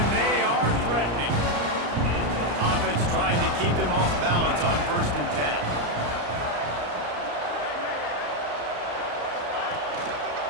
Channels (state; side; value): late; left; 34 ms